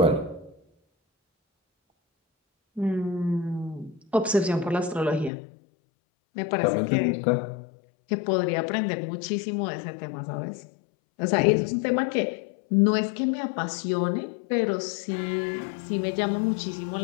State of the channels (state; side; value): drops out; right; at 5.3 s